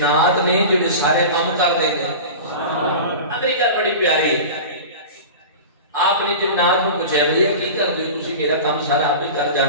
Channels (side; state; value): both; inverted; correlation -0.32